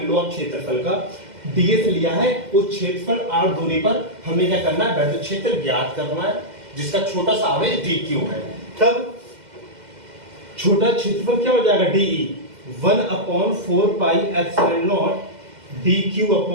लो आप क्षेत्रफल का, ds लिया है, उस क्षेत्रफल r दूरी पर हमें क्या करना है, विद्युत क्षेत्र ज्ञात करना है, जिसका छोटा सा आवेश dq है। तब छोटा क्षेत्रफल क्या हो जाएगा, de 1/4 pi epsilon not dq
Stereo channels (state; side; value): late; left; 2.1 ms